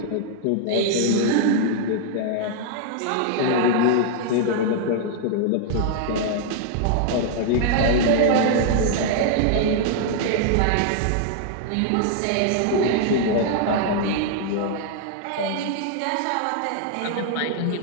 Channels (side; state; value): both; different; correlation 0.00